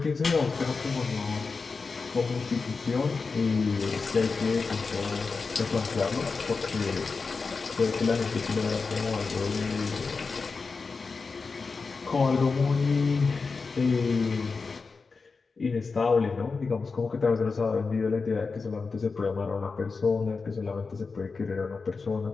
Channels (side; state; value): right; quieter; 4.5 dB